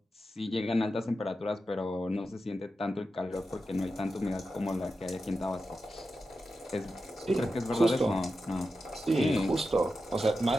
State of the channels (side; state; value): both; normal; correlation 0.90